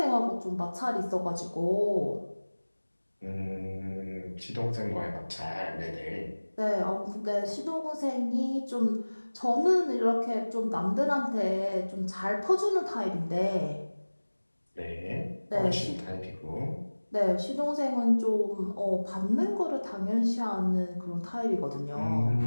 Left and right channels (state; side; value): inverted; both; correlation -1.00